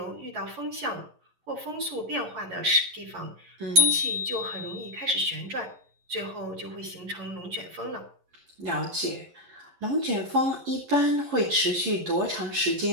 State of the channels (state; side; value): late; left; 11 ms